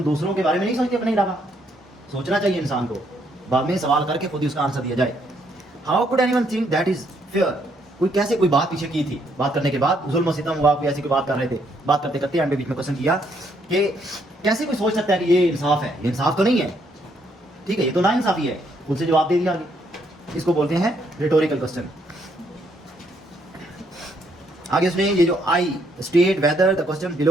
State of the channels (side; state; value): both; normal; correlation 0.71